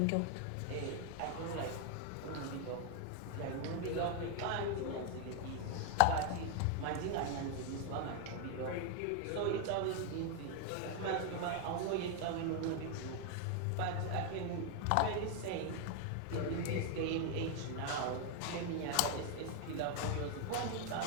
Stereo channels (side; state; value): both; different; correlation 0.01